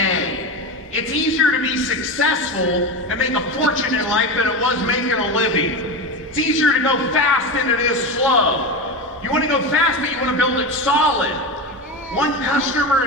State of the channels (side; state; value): both; normal; correlation 0.21